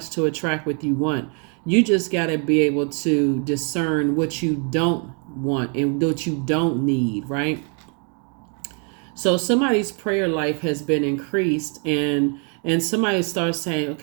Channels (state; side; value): quieter; left; 38.9 dB